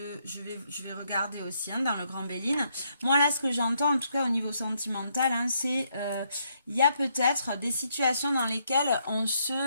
Je vais regarder aussi hein, dans le Grand Béline. Moi là, ce que j'entends, en tout cas au niveau sentimental, hein, c'est il y a peut-être des situations dans lesquelles on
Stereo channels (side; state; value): both; inverted; correlation -0.74